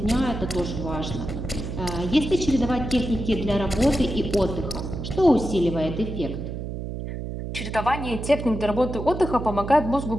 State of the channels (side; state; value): right; noise; hum, 6 dB below the sound